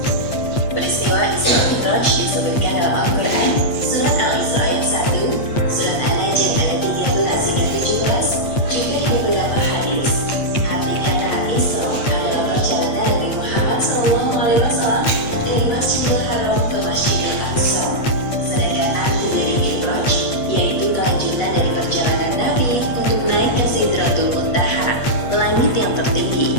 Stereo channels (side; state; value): right; late; 8.5 ms